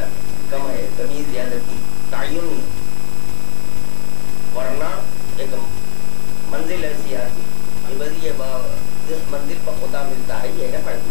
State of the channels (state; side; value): quieter; right; 24.0 dB